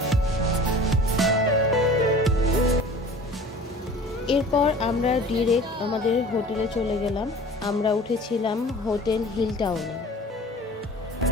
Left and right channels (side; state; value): both; normal; correlation 0.43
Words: এরপর আমরা ডিরেক্ট আমাদের হোটেলে চলে গেলাম। আমরা উঠেছিলাম হোটেল হিল টাউনে।